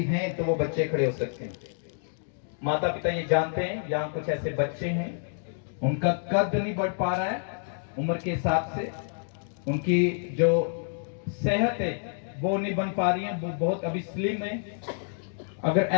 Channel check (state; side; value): silent; right; digital silence